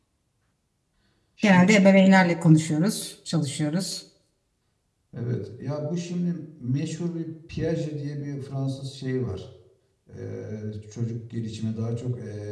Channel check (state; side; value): identical; both; correlation 1.00